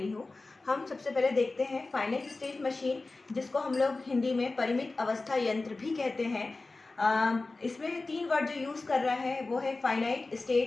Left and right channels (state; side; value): quieter; right; 3.4 dB